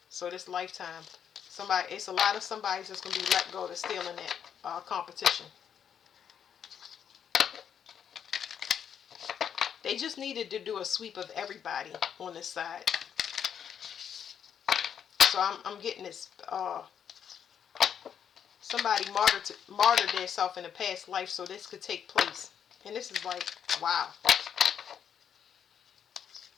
So this lifetime, it's a lot of somebody's just gonna be let go to steal in that competition. They just needed to do a sweep of everybody on this side. So I'm getting this. Somebody martyred themselves in a past life so this could take place. And this is like, wow.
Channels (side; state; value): right; quieter; 8.3 dB